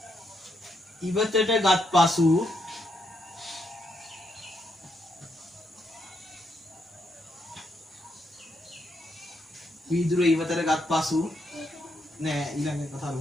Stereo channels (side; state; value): both; normal; correlation 0.78